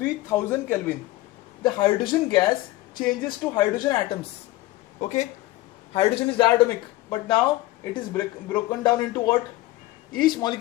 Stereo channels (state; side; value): quieter; right; 17.9 dB